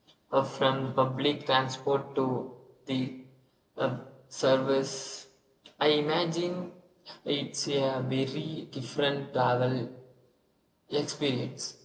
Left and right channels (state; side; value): identical; both; correlation 1.00